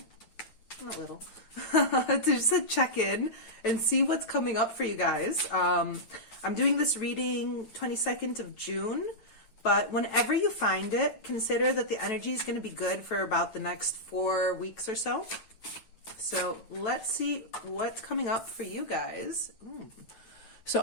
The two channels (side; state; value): right; late; 9.1 ms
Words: Not little. To just check in and see what's coming up for you guys. I'm doing this reading 22nd of June. But whenever you find it, consider that the energy is going to be good for about the next 4 weeks or so. So let's see what's coming up for you guys. So